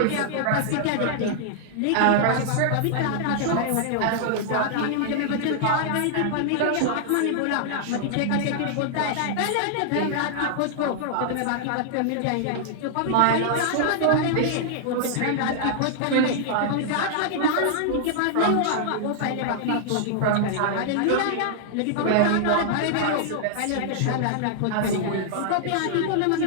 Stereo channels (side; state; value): both; different; correlation -0.01